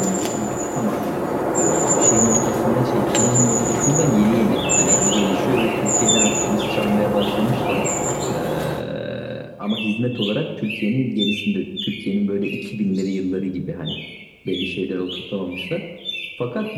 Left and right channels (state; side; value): identical; both; correlation 1.00